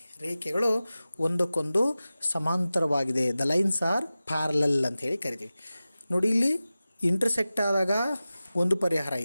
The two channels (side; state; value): both; inverted; correlation -0.96